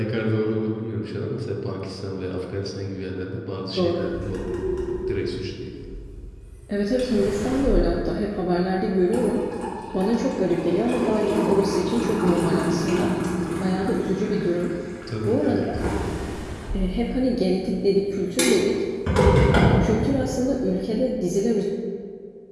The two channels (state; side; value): identical; both; correlation 1.00